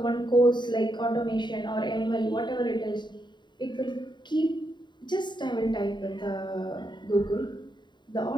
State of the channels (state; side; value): late; right; 0.22 ms